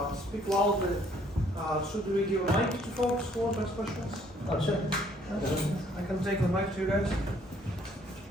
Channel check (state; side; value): normal; both; correlation 0.63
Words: speak loudly. Should we give a mic to folks who want to ask questions? Oh sure. I can take the mic to you guys.